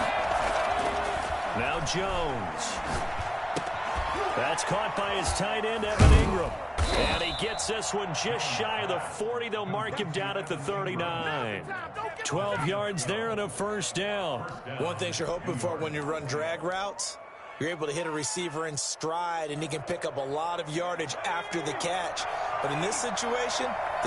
Jones. That's caught by his tight end, Evan Ingram. And he gets this one just shy of the 40. They'll mark him down at the 39. 12 yards there and a first down. One thing you're hoping for when you run drag routes, you're able to hit a receiver in stride, and he can pick up a lot of yardage after the catch. But in this situation,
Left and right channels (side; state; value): both; identical; correlation 1.00